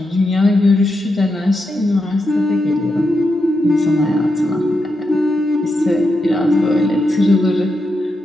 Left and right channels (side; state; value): both; normal; correlation 0.85